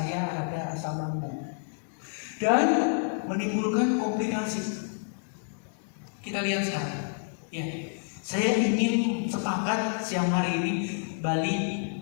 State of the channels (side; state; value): right; silent; digital silence